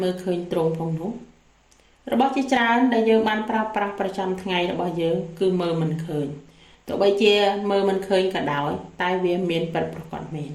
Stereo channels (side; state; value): both; identical; correlation 1.00